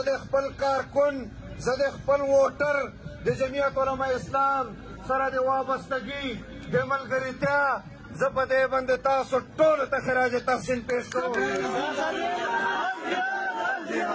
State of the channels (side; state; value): both; identical; correlation 1.00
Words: د خپل کارکن زه د خپل ووټر د جمعیت علماء اسلام سره د وابستګي د ملګرتیا زه په دې باندې تاسو ټولو ته خراج تحسین پیش کوم